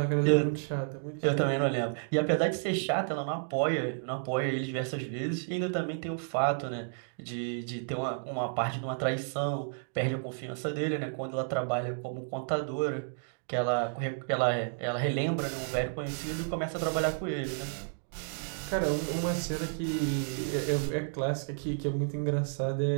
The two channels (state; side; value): silent; left; digital silence